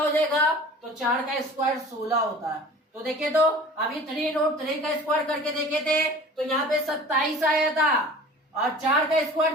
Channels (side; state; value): both; normal; correlation 0.43